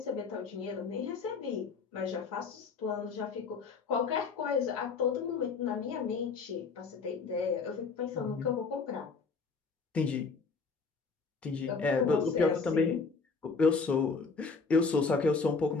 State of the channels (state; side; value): quieter; right; 4.7 dB